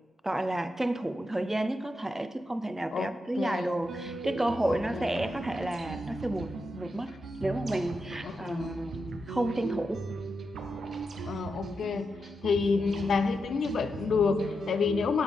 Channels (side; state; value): both; normal; correlation 0.86